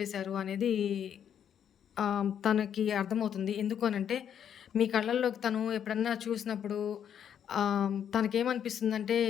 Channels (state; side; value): quieter; right; 8.9 dB